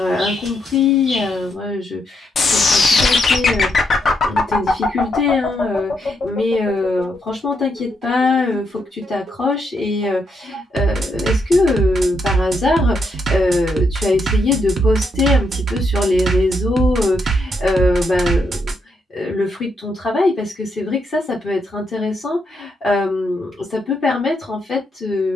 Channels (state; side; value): normal; both; correlation 0.78